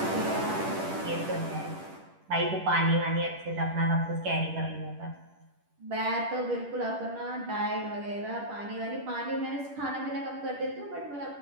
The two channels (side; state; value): left; late; 10 ms